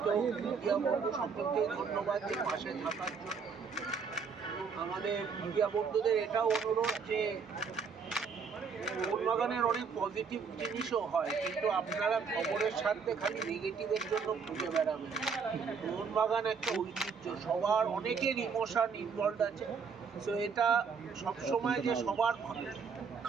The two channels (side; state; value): left; quieter; 5.7 dB